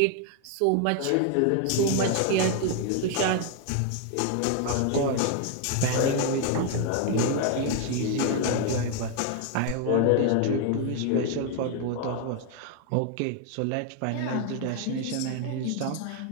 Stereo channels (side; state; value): both; different; correlation 0.00